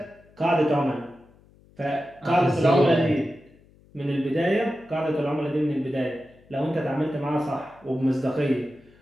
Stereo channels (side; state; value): left; noise; hum, 28 dB below the sound